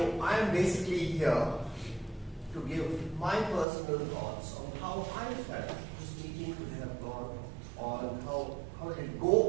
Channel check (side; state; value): left; drops out; at 3.7 s